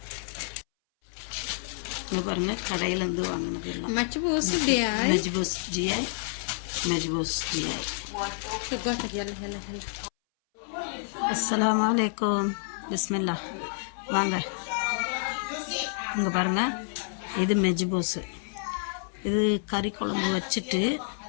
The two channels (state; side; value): silent; right; 59 dB below the other